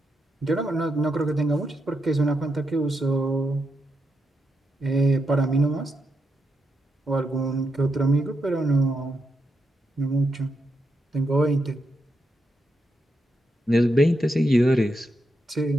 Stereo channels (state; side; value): normal; both; correlation 0.84